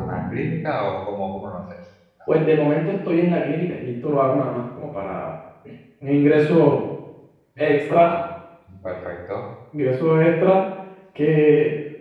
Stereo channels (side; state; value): both; identical; correlation 1.00